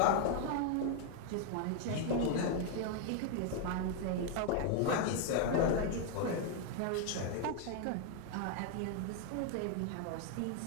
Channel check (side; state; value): both; different; correlation 0.00